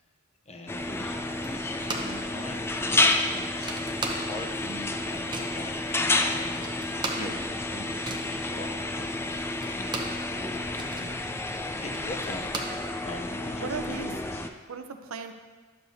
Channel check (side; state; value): both; normal; correlation 0.12